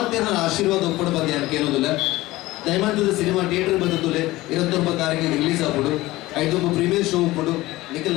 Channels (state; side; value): quieter; right; 18.3 dB